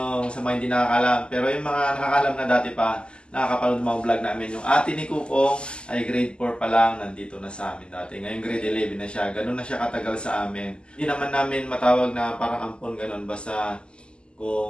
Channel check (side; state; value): right; late; 0.050 ms